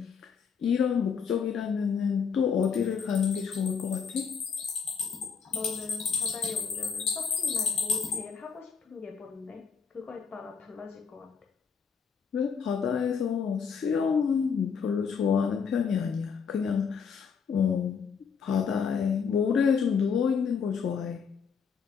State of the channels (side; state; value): right; quieter; 6.3 dB